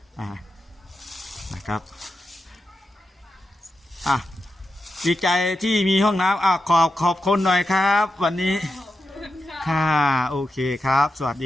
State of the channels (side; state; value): both; normal; correlation 0.88